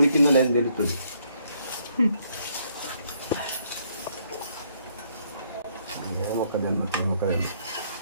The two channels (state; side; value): inverted; both; correlation -0.69